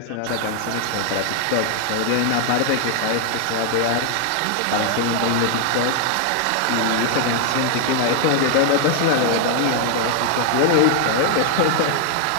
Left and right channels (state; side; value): different; both; correlation 0.00